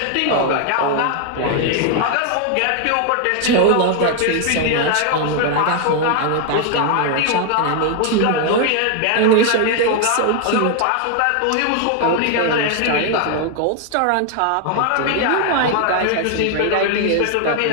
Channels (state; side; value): different; both; correlation 0.00